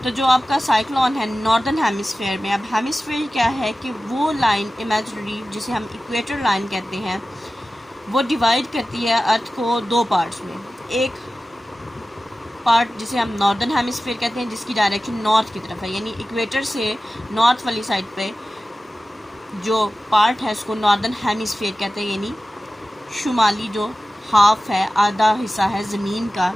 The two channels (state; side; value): normal; both; correlation 0.95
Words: तो जो आपका साइक्लोन है नॉर्दर्न हेमिस्फेयर में, अब हेमिस्फेयर क्या है कि वो लाइन इमेजिनरी जिसे हम इक्वेटर लाइन कहते हैं, वो डिवाइड करती है अर्थ को दो पार्ट्स में। एक पार्ट जिसे हम नॉर्दर्न हेमिस्फेयर कहते हैं, जिसकी डायरेक्शन नॉर्थ की तरफ है, यानी इक्वेटर से नॉर्थ वाली साइड पे जो पार्ट है उसको नॉर्दर्न हेमिस्फेयर कहते हैं, यानी शुमाली जो हाफ है, आधा हिस्सा है ज़मीन का,